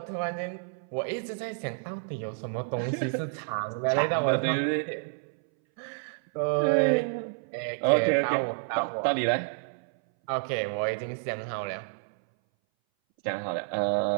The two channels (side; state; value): left; silent; 58 dB below the other